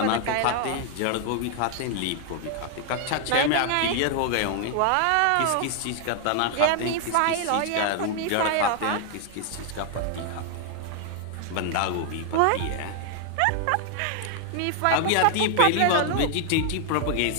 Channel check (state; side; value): different; both; correlation 0.00